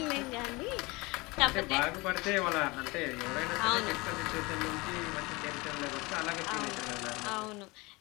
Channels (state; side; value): quieter; right; 24.3 dB